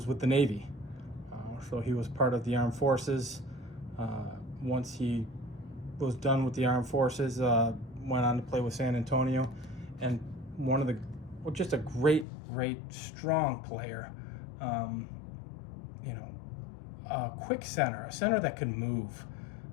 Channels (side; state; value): right; drops out; at 12.2 s